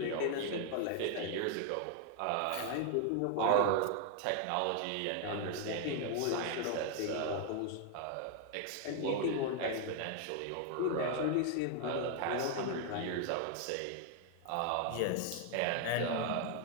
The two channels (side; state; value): both; different; correlation 0.00